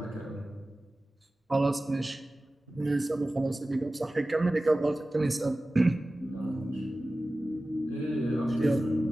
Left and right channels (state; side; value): normal; both; correlation 0.96